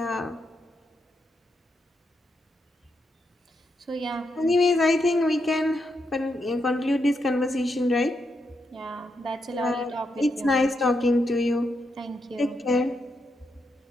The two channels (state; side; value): normal; both; correlation 0.82